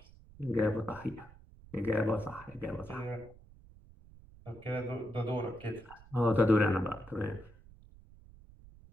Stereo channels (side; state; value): right; noise; rumble, 22 dB below the sound